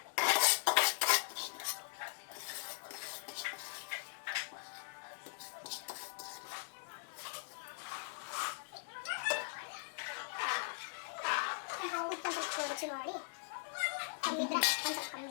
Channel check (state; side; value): silent; right; digital silence